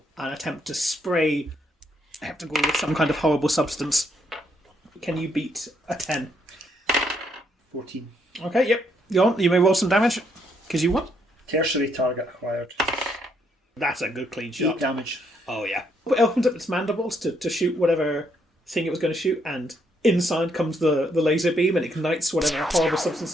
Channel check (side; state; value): both; normal; correlation 0.73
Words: and attempt to spray Heptagruel with some kind of horrible substance. Can you beat a 10? 14. Okay, yep. Go on. You may roll some damage, because you won. Tertiary target acquired. That's a good clean 8 shot. damage. Oh, yeah. It opens up its mandibles to shoot whatever thing it was going to shoot, and inside comes the laser beam, and it ignites whatever horrible substance